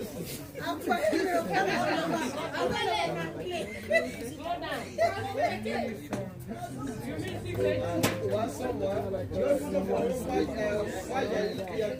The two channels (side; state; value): both; identical; correlation 1.00